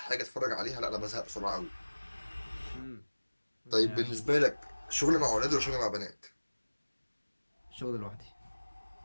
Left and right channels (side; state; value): both; inverted; correlation -1.00